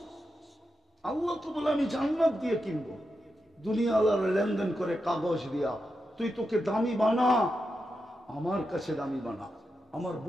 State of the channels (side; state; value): both; normal; correlation 0.88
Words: আল্লাহ তো বলে আমি জান্নাত দিয়ে কিনবো। দুনিয়া আল্লাহর লেনদেন করে কাগজ দিয়া, তুই তোকে দামি বানা, আমার কাছে দামি বানা, আমার